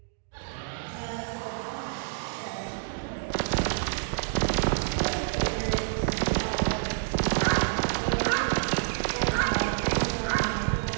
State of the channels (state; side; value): silent; left; digital silence